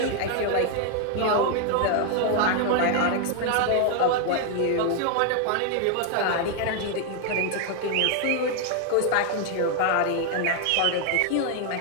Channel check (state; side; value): different; both; correlation 0.00